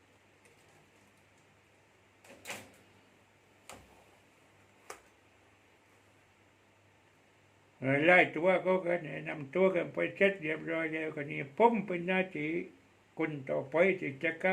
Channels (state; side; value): identical; both; correlation 1.00